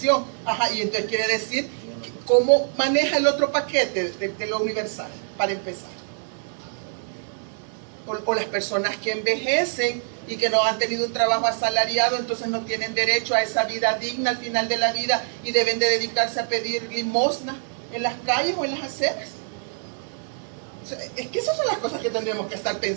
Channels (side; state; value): left; silent; 58 dB below the other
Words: Y entonces quiere decir, ¿cómo maneja el otro paquete de lo universal, para empezar? O las personas que envejecen y que no han tenido un trabajo asalariado, entonces no tienen derecho a esa vida digna al final de la vida y deben de dedicarse a pedir limosna en las calles o en las aceras. O sea, es que esas son las cosas que tendremos que estar